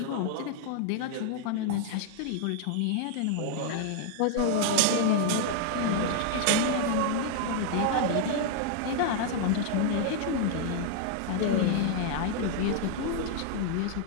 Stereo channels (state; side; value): different; both; correlation 0.00